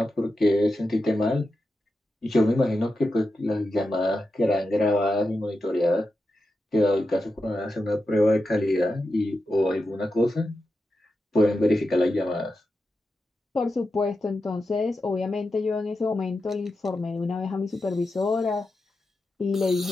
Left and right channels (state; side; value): normal; both; correlation 0.89